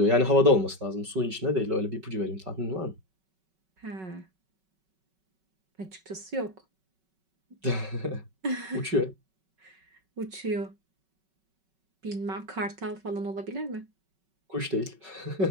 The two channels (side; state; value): left; late; 5.3 ms